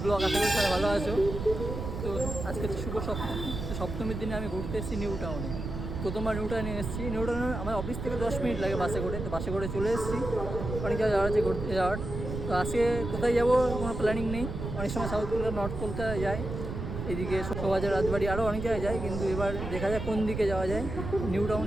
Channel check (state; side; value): noise; right; rumble, 6 dB below the sound